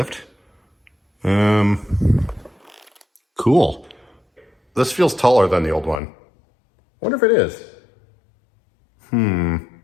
Cool. This feels taller than the old one. Wonder if it is.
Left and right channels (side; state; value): right; drops out; at 6.0 s